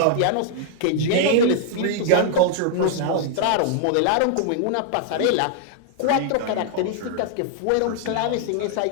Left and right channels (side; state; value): both; different; correlation -0.01